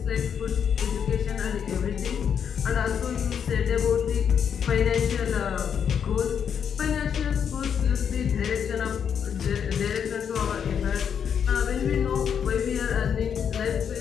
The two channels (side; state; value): right; quieter; 7.7 dB